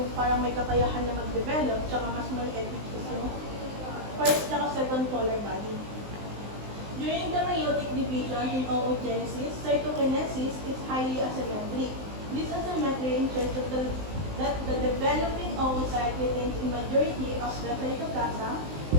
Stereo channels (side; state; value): left; late; 19 ms